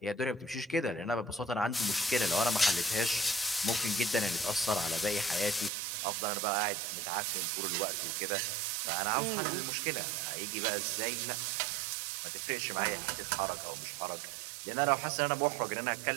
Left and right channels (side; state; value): left; drops out; at 5.7 s